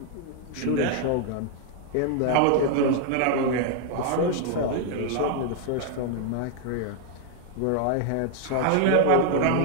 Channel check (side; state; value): both; different; correlation 0.00